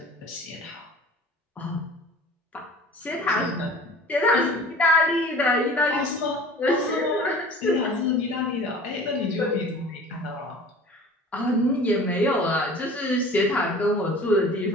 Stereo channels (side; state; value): both; normal; correlation 0.43